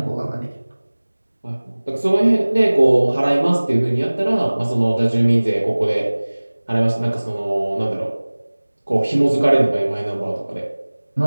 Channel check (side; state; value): both; inverted; correlation -1.00